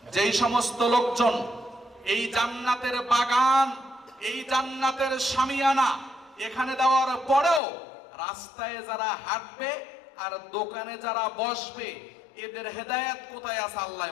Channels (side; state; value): right; drops out; at 7.6 s